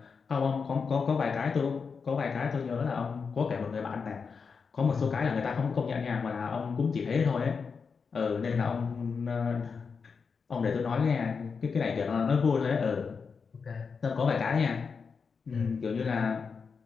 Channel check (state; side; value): quieter; right; 5.5 dB